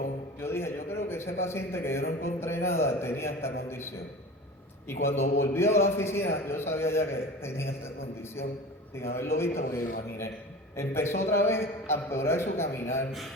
yo dije, yo creo que ese paciente que yo no encontré nada tenía esta condición. Y cuando volvió a la oficina, yo sabía ya que tenía esta condición, sin haberlo visto, porque lo imaginé. Empezó otra vez a empeorar su caminar,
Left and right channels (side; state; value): both; normal; correlation 0.35